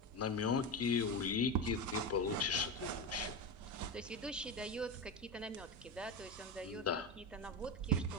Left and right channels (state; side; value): normal; both; correlation 0.18